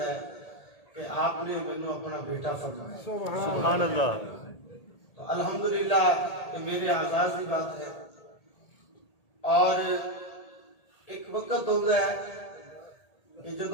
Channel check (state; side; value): late; right; 1.8 ms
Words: کہ آپ نے میں اپنا بیٹا فرمایا، سبحان اللہ۔ تو الحمدللہ یہ میرے اعزاز کی بات ہے۔ اور ایک وقت ہوتا ہے کہ